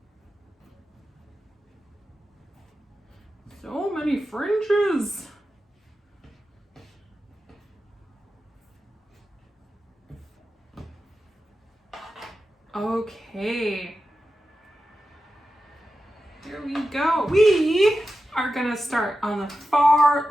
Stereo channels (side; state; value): both; normal; correlation 0.91